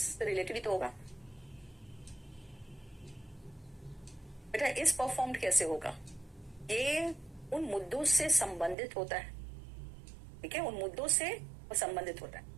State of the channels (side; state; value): left; drops out; at 8.8 s